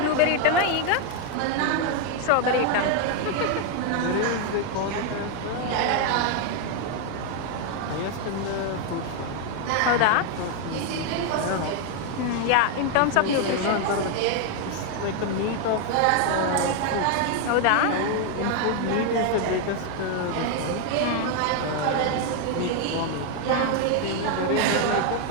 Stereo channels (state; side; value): different; both; correlation 0.01